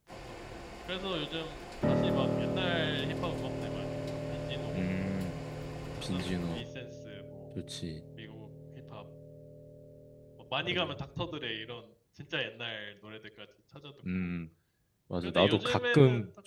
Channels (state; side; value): identical; both; correlation 1.00